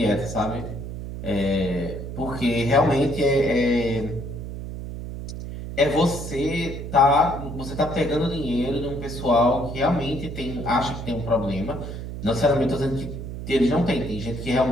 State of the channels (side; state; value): right; noise; hum, 8 dB below the sound